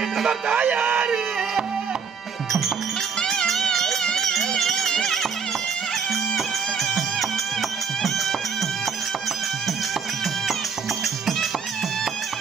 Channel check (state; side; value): quieter; left; 6.2 dB